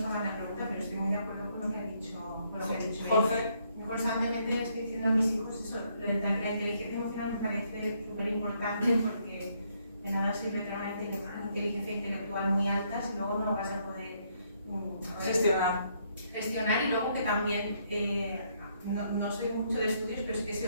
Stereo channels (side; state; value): both; inverted; correlation -0.72